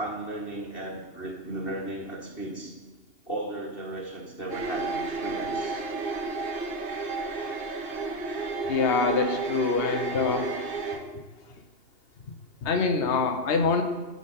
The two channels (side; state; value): right; late; 2.8 ms